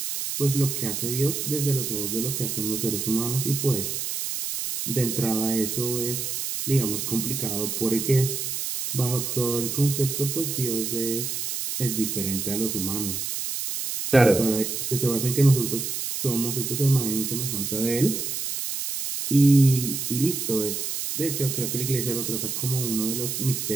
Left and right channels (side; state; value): right; noise; hiss, 3 dB below the sound